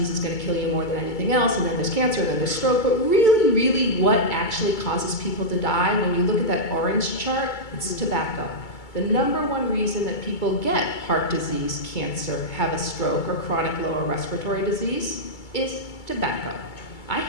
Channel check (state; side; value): late; right; 2.3 ms